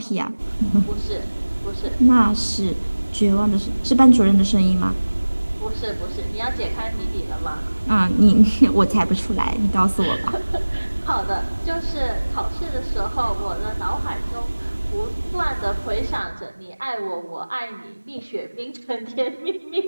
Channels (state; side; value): inverted; both; correlation -1.00